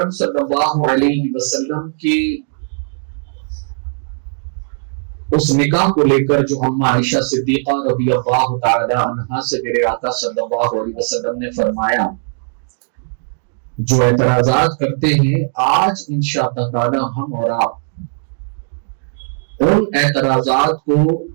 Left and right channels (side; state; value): left; silent; digital silence